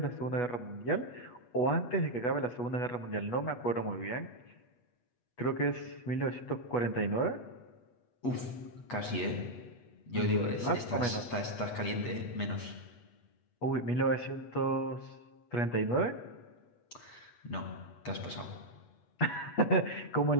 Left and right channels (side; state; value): right; late; 8.3 ms